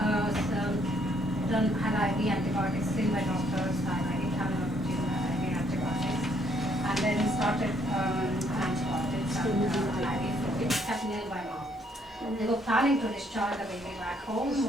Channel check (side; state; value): both; normal; correlation 0.68